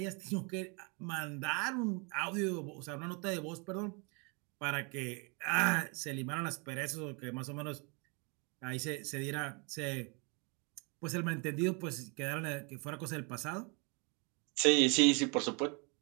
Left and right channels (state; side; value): quieter; left; 32.7 dB